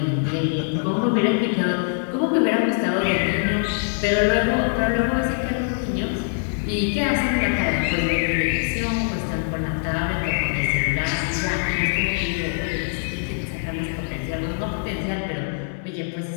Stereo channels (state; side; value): silent; right; 57 dB below the other